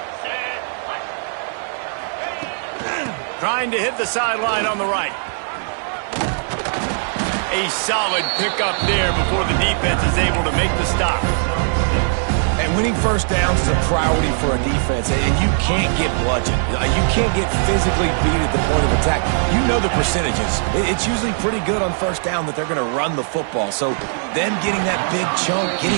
Trying to hit the sideline on the right. A solid pickup there before the defense is able to make the stop. And winning first downs is a priority for a defense, and you can't get bludgeoned. You can't get physically beat at the point of attack. You know the percentages. It's usually pretty good on first down that they're going to run the football. So them getting that big chunk, getting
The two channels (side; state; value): left; silent; 59 dB below the other